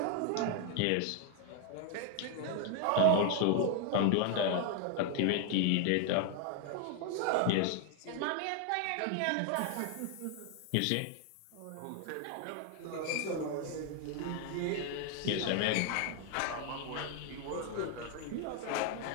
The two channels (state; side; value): different; both; correlation 0.00